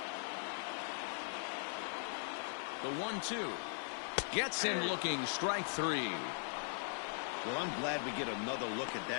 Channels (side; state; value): right; silent; digital silence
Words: The 1-2 gets him looking. Strike 3. Well, I'm glad we get another look at